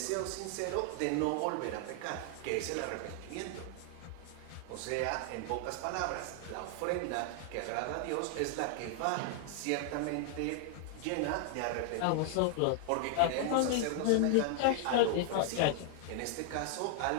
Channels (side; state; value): both; different; correlation 0.00